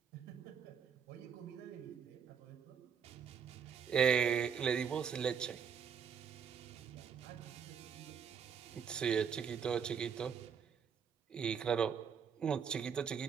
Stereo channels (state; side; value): quieter; left; 7.0 dB